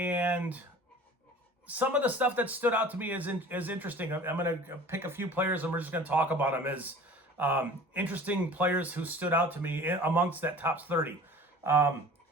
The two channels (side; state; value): both; normal; correlation 0.43